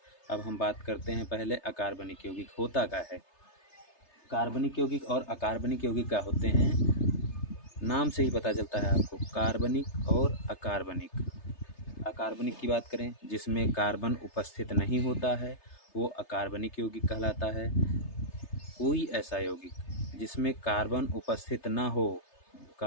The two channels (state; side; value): late; right; 3.3 ms